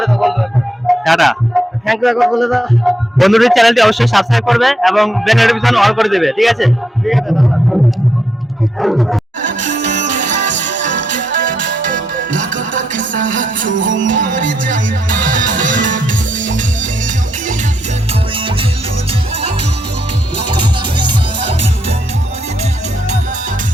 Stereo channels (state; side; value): normal; both; correlation 0.80